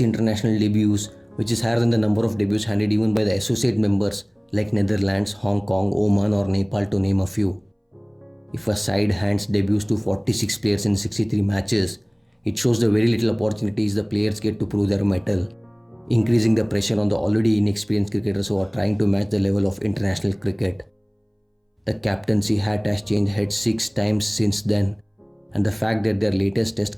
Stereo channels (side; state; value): both; identical; correlation 1.00